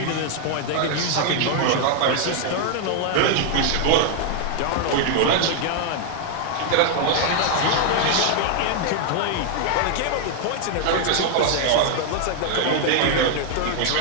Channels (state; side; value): different; both; correlation 0.00